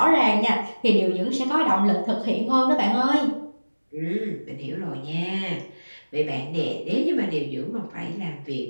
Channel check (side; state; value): both; inverted; correlation -1.00